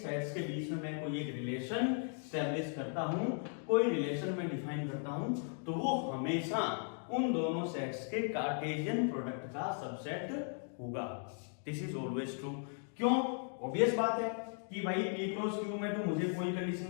के बीच में मैं कोई एक रिलेशन स्टैब्लिश करता हूं, कोई रिलेशन में डिफाइन करता हूं, तो वो हमेशा उन दोनों सेट्स के कार्टेशियन प्रोडक्ट का सबसेट होगा। This is always true. क्यों, ऑब्वियस बात है कि भाई p क्रॉस q में तो मुझे कोई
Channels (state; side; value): silent; right; 53 dB below the other